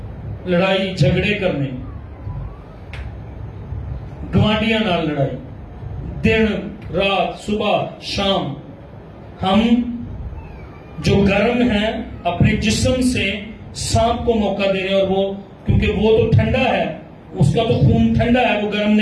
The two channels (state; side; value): identical; both; correlation 1.00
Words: लड़ाई झगड़े करने, गवांडियां नाल लड़ाई, दिन रात सुबह शाम। हम जो गर्म है अपने जिस्म से सांप को मौका दे रहे हैं, और वो क्योंकि वो तो ठंडा है, उसका तो खून ठंडा है, वो गर्म